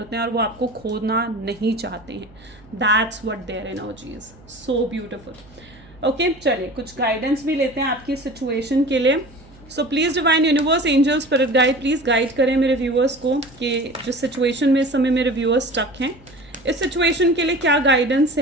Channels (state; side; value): noise; right; hum, 25 dB below the sound